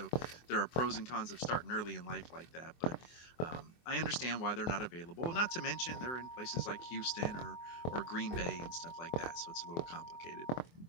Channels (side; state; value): right; late; 24 ms